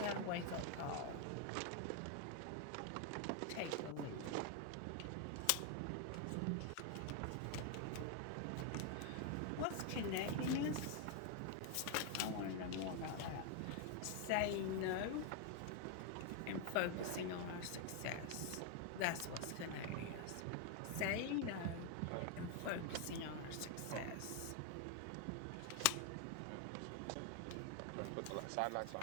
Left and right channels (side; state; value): both; different; correlation 0.01